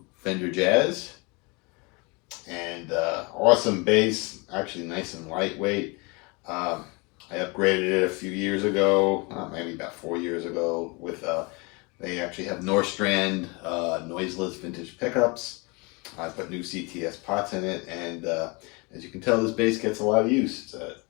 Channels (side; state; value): right; quieter; 28.7 dB